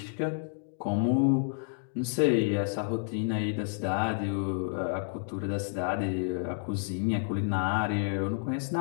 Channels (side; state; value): right; silent; digital silence